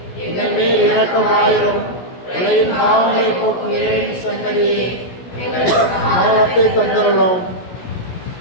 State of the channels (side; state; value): right; late; 17 ms